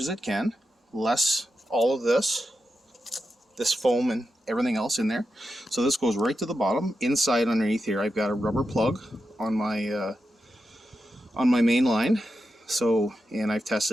it can, less all of this foam and everything else in there. So this goes right to the bottom. Inside underneath here, I've got a rubber plug on my main line. So, and I've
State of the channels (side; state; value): both; normal; correlation 0.88